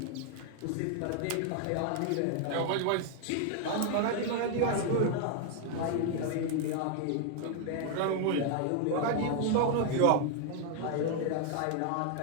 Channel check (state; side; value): different; both; correlation 0.00